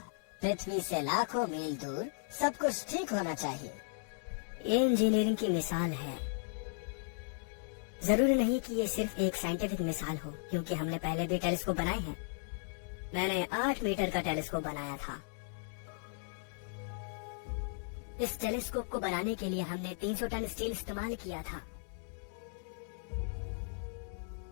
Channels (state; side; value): silent; right; digital silence